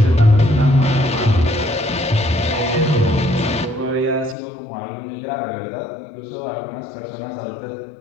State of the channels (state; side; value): drops out; right; at 4.4 s